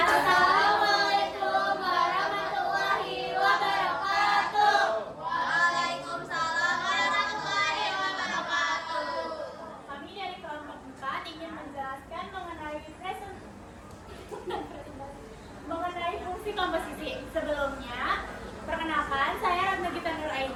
warahmatullahi wabarakatuh. Waalaikumsalam warahmatullahi wabarakatuh. Kami dari kelompok 4 ingin menjelaskan mengenai fungsi komposisi. Sebelumnya, perkenalkan saya Ratna Gita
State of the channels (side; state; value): both; identical; correlation 1.00